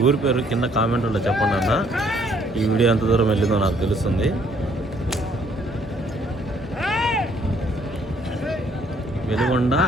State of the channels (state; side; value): normal; both; correlation 0.65